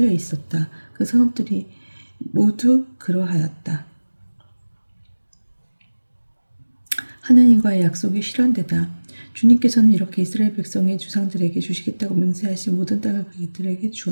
있었다. 그 성읍들이 모두 그러하였다. 하느님과의 약속이 실현되다. 주님께서는 이렇게 이스라엘 백성의 주상들에게 주시겠다고 맹세하신 모든 땅을 그들에게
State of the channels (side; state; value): both; inverted; correlation -1.00